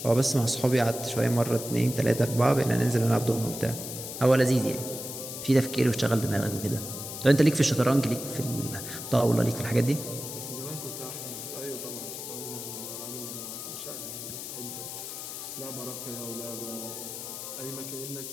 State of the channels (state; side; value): noise; left; hiss, 8 dB below the sound